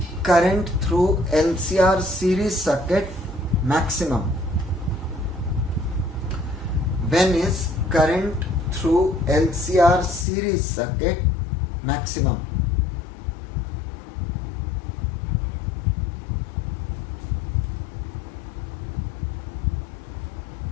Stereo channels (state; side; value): drops out; right; at 10.2 s